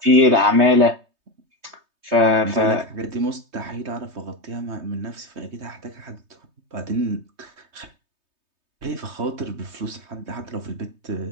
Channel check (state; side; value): late; left; 3.2 ms